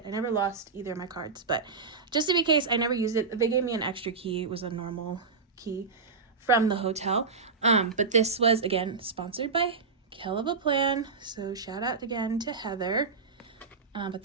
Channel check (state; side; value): quieter; left; 4.7 dB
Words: I never lost either of my cards, but just to be case, I never used it. They gave me an extra key. It was a normal key from the hotel. But this was, again, sponsored by KellofaPlan. So shout out again to Heather. But